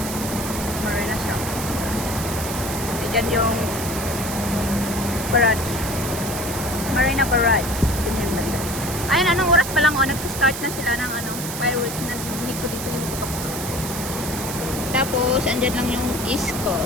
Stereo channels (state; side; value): noise; right; hiss, 7 dB below the sound